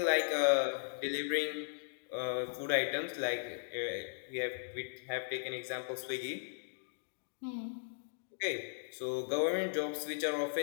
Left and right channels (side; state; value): right; silent; digital silence